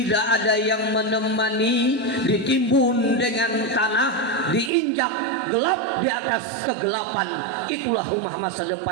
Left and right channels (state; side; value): drops out; left; at 4.7 s